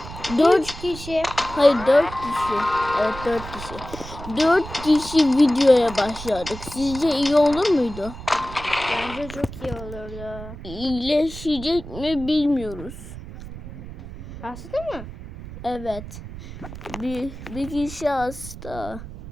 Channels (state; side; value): noise; right; rumble, 12 dB below the sound